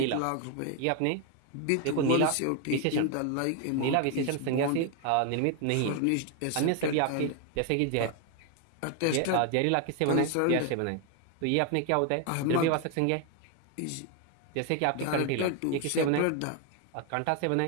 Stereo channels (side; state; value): both; different; correlation 0.01